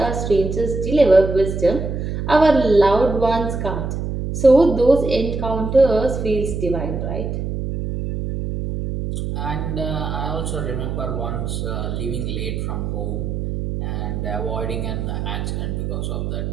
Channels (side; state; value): right; noise; hum, 3 dB below the sound